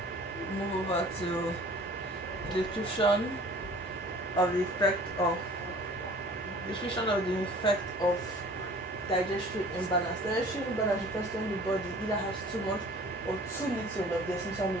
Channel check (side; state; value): both; normal; correlation 0.48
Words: move over to the description of the effect of digestive imbalance. Digestive imbalance refers to when the body either has too much or too little of the essential